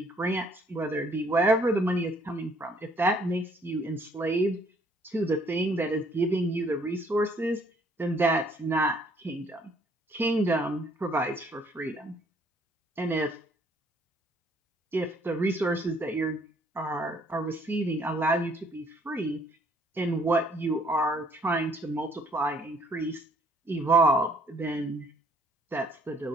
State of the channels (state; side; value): normal; both; correlation 0.63